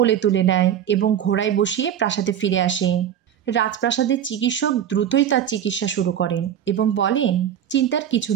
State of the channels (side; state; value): left; quieter; 9.8 dB